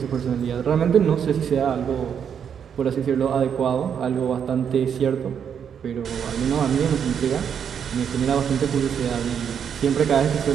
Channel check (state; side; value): quieter; left; 7.8 dB